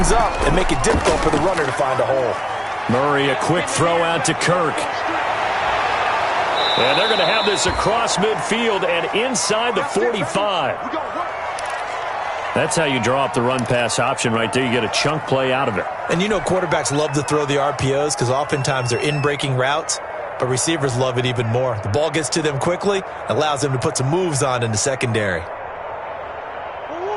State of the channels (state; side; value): identical; both; correlation 1.00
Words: up, and make it difficult for the runner to find a hole. Murray, a quick throw out to Kirk. And they're going to have this across midfield and inside the 45. That's how you draw up the run-pass option right there. You get a chunk play out of it. And you know quarterbacks love to throw the RPOs because oftentimes they're in-breaking routes, but receivers love it even more. The ball gets to them quickly, allows them to put some moves on in the secondary.